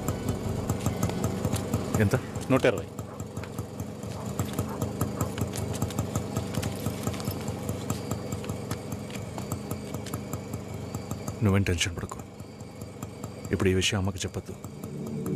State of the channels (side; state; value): both; identical; correlation 1.00